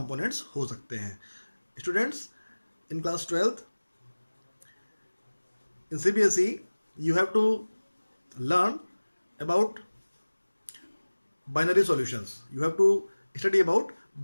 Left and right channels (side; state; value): both; inverted; correlation -1.00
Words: हो सकते हैं। Students, in class 12th in CBSE you have to learn about binary solutions. You have to study about